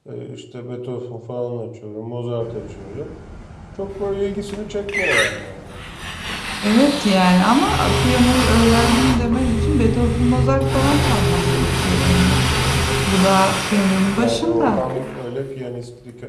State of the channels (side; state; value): both; identical; correlation 1.00